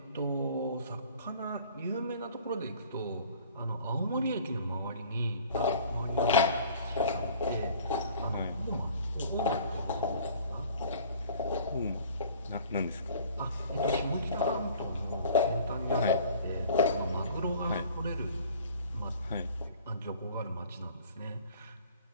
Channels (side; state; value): both; inverted; correlation -0.50